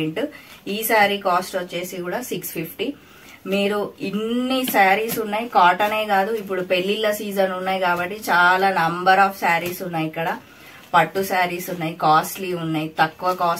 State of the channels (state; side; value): identical; both; correlation 1.00